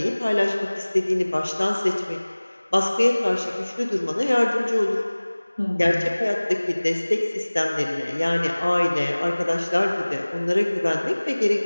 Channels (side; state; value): both; inverted; correlation -1.00